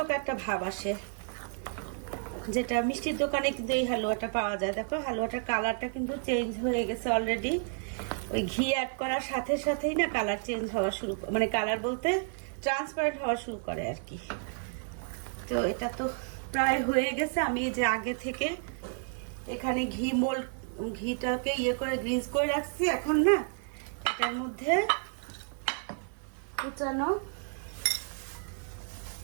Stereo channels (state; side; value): silent; left; 57 dB below the other